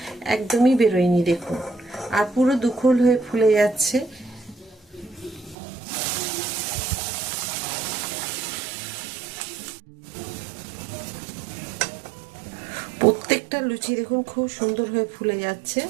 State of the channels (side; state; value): left; drops out; at 5.6 s